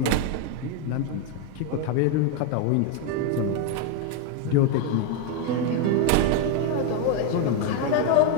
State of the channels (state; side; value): different; both; correlation 0.01